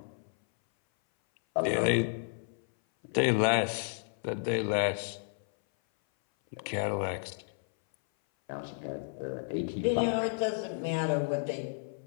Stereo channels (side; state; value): right; silent; 56 dB below the other